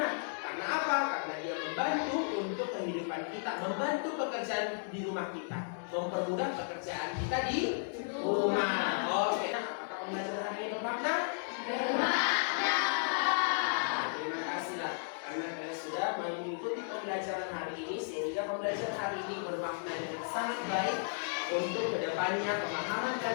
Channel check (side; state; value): right; silent; 55 dB below the other